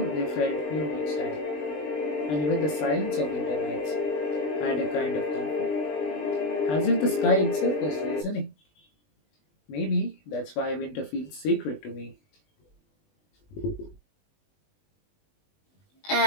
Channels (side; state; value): right; late; 20 ms